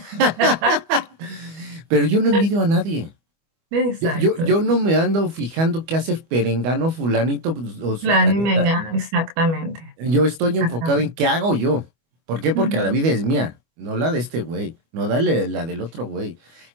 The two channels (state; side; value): late; left; 25 ms